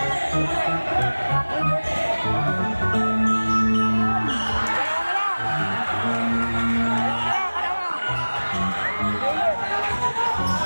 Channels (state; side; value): inverted; both; correlation -1.00